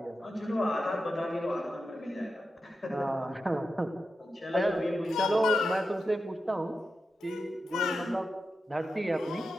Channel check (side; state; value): both; normal; correlation 0.89